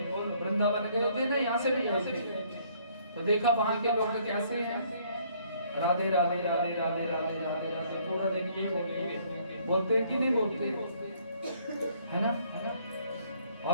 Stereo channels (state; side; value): inverted; both; correlation -0.63